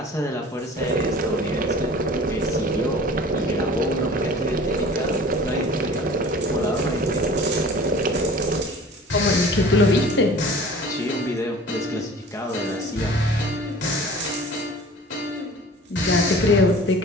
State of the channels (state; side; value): normal; both; correlation 0.44